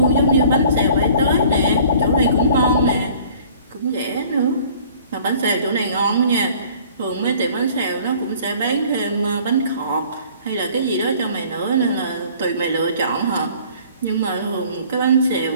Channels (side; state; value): both; inverted; correlation -0.52